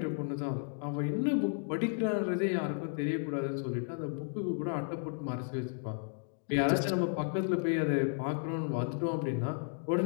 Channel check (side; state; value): right; silent; 55 dB below the other